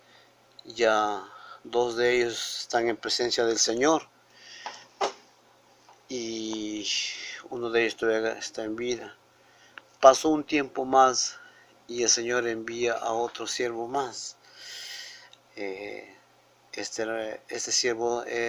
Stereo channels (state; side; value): identical; both; correlation 1.00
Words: Ya dos de ellos están en presencia del Señor y uno de ellos todavía está en vida. Pasó un tiempo más y el Señor envía a otro siervo más. Este siervo